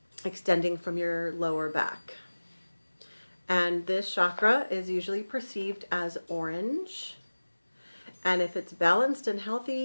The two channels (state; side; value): inverted; both; correlation -1.00